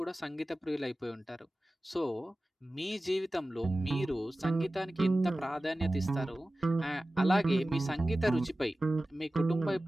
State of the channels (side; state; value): both; normal; correlation 0.96